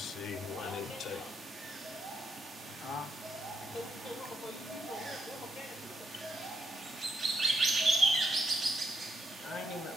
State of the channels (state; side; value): normal; both; correlation 0.78